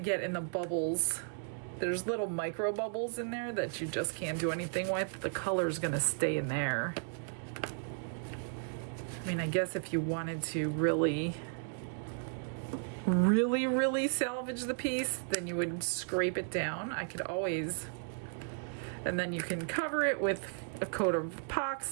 in the bubbles. There's little micro bubbles in there that you just can't do anything with. The color's gonna stay in there. I mean, I guess if you wanted to really salvage the piece, then you would scrape it down. I could always, and then you can cover it with a coat of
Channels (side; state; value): left; silent; digital silence